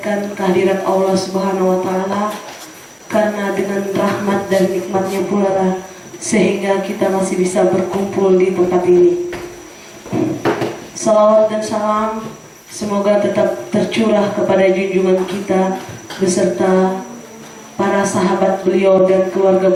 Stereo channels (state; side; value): identical; both; correlation 1.00